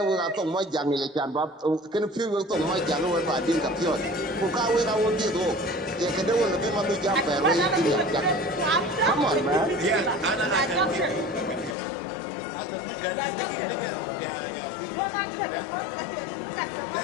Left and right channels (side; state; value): right; drops out; at 11.8 s